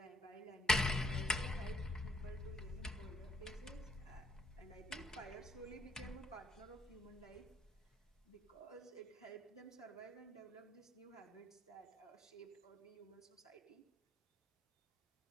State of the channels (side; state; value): both; normal; correlation 0.68